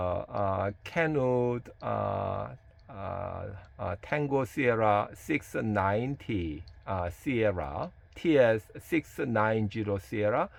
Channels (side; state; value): both; identical; correlation 1.00